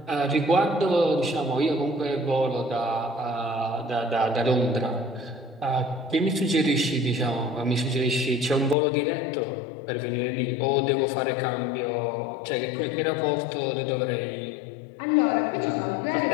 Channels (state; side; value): drops out; right; at 8.8 s